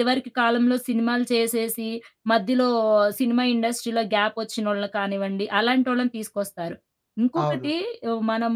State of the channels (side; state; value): both; identical; correlation 1.00